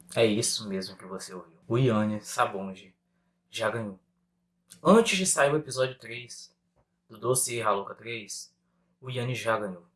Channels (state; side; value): identical; both; correlation 1.00